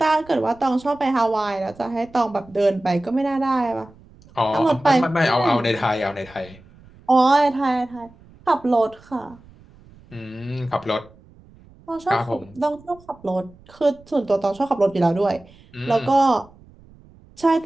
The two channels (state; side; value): noise; right; rumble, 26 dB below the sound